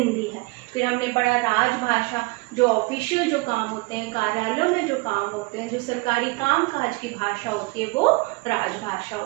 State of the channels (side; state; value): left; quieter; 25.1 dB